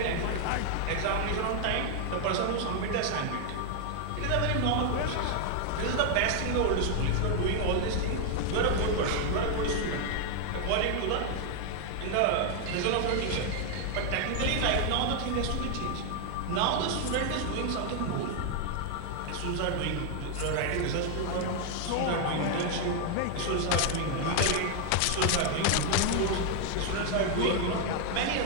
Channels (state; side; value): different; both; correlation 0.00